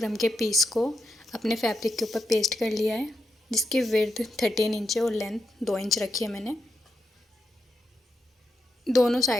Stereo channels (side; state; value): both; normal; correlation 0.84